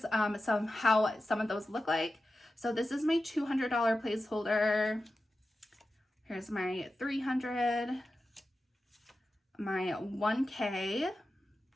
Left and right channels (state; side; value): normal; both; correlation 0.92